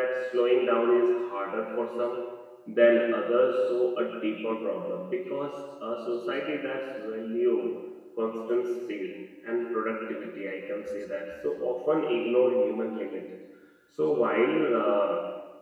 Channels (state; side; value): identical; both; correlation 1.00